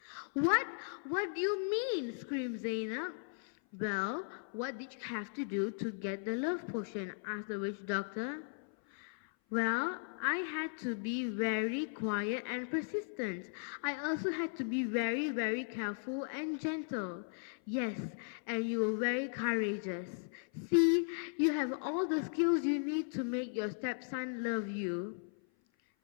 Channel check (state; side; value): silent; right; 53 dB below the other